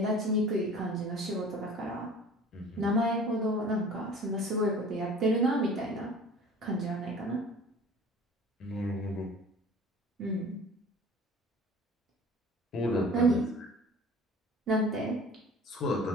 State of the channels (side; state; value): both; normal; correlation 0.44